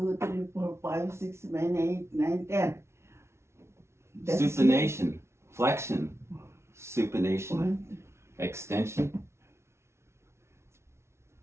3, 4, 5, 6, 7, 8, 9, 10. That's Supination, flexion, supination, 1, extension,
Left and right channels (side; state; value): left; late; 0.13 ms